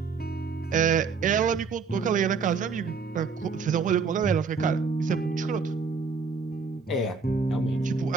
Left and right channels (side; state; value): left; quieter; 5.1 dB